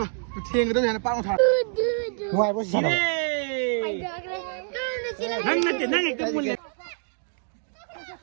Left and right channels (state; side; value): silent; left; digital silence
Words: thiên cái đó này nó bao thằng ngoài bố sao năng cái mùi